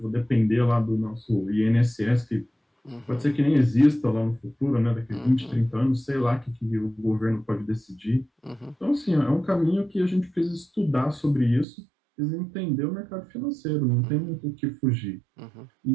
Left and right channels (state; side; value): drops out; left; at 11.7 s